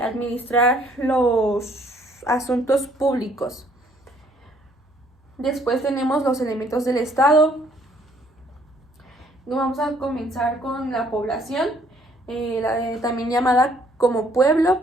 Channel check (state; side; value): normal; both; correlation 0.63